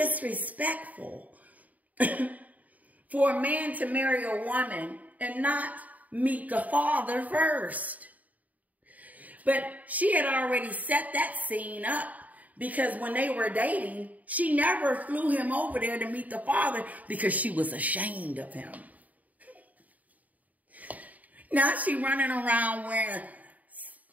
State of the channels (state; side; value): late; left; 0.074 ms